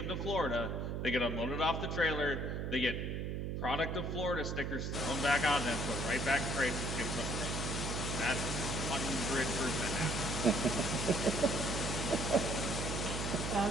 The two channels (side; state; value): right; noise; hum, 2 dB below the sound